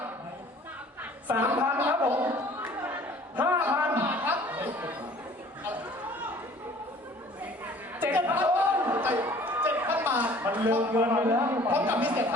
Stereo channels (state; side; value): normal; both; correlation 0.51